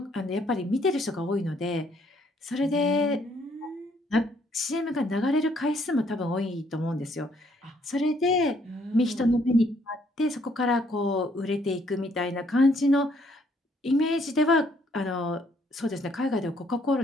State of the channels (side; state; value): both; normal; correlation 0.67